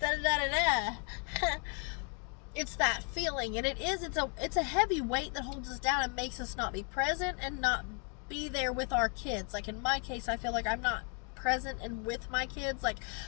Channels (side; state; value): right; quieter; 38.9 dB